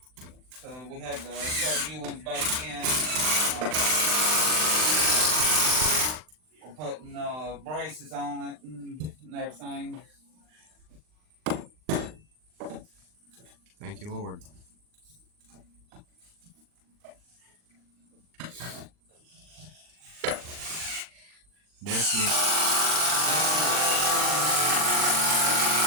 so we had to put new ones back in. We're putting braces on it and everything. Thank you, Lord.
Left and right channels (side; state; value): left; late; 39 ms